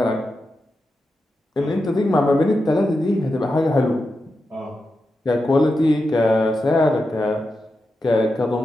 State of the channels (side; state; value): both; normal; correlation 0.89